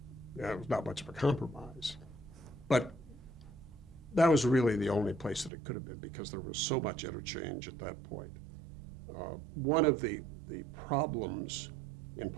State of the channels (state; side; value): drops out; left; at 5.5 s